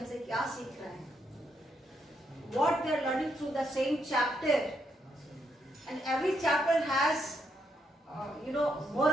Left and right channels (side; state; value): both; normal; correlation 0.78